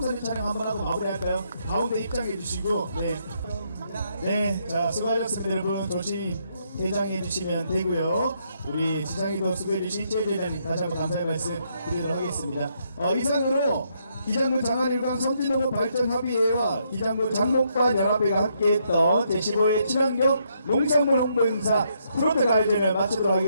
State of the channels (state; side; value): inverted; both; correlation -0.75